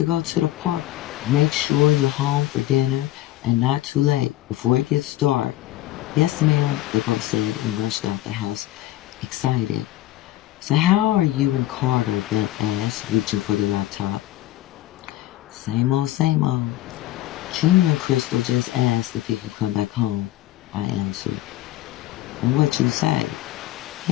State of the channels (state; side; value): quieter; right; 15.2 dB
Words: go to the park. Make sure you're home for dinner and not too late before it gets dark." "Yes, ma'am," they both said and rushed out the house, excited. "So how are you and Carter?" Beth asked, reaching for the laptop. Same old, same old. Junior and Crystal just asked if he could come back home," I answered. "And what you say?"